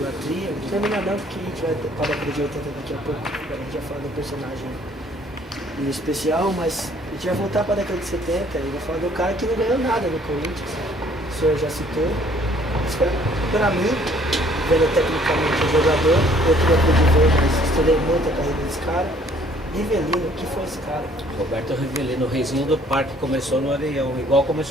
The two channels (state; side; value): normal; both; correlation 0.60